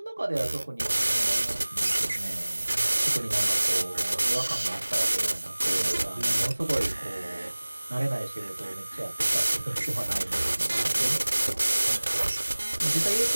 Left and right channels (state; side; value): inverted; both; correlation -1.00